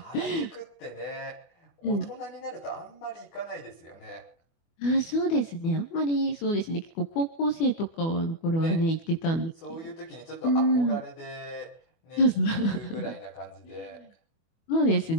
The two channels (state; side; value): late; right; 24 ms